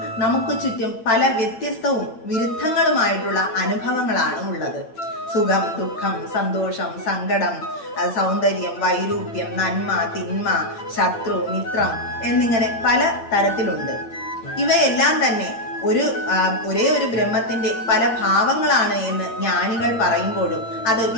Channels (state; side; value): late; right; 8.8 ms